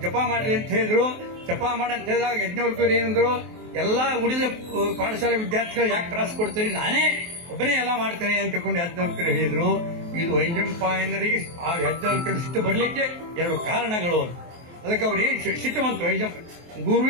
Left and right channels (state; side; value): late; left; 23 ms